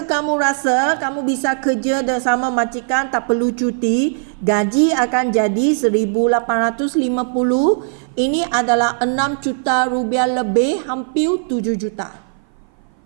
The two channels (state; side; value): silent; left; 57 dB below the other